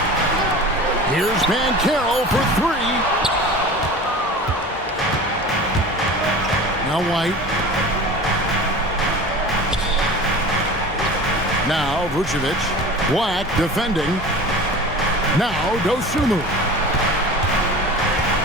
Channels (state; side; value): normal; both; correlation 0.36